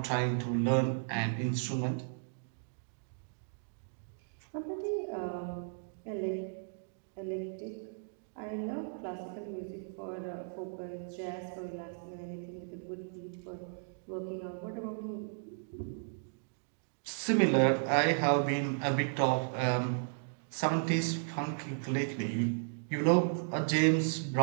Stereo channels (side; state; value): left; silent; digital silence